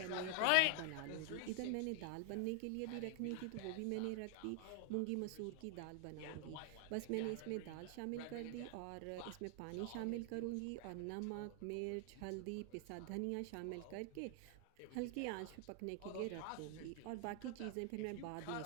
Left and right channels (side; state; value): both; different; correlation 0.00